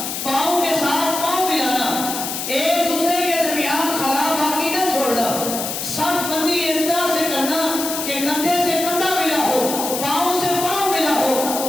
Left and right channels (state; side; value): noise; left; hiss, 4 dB below the sound